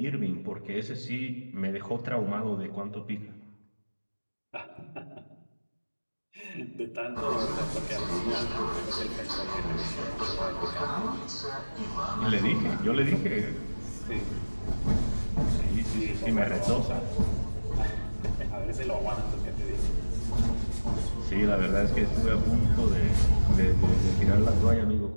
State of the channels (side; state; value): both; inverted; correlation -1.00